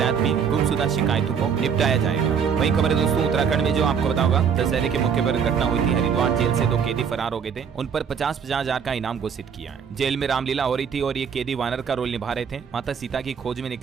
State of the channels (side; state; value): left; quieter; 7.0 dB